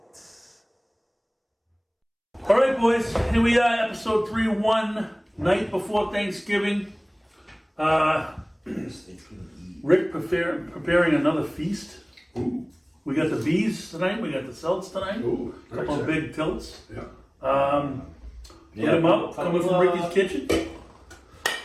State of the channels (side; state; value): both; identical; correlation 1.00